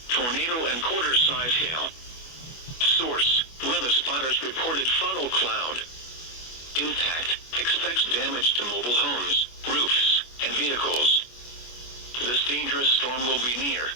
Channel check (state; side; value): late; right; 25 ms